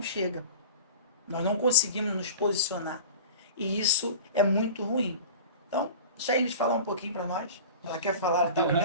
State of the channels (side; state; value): both; inverted; correlation -0.36